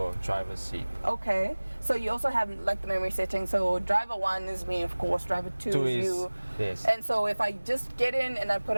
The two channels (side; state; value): both; inverted; correlation -1.00